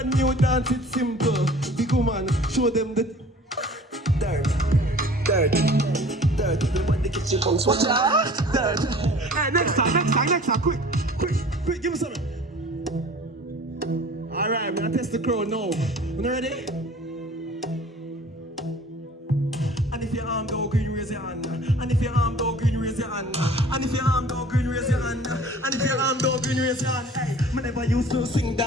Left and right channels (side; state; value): both; normal; correlation 0.47